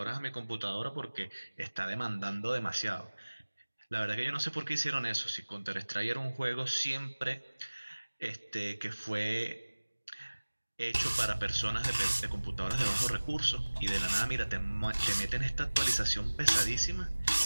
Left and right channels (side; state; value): both; inverted; correlation -1.00